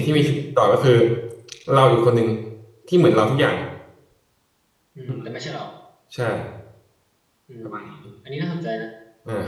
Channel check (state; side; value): identical; both; correlation 1.00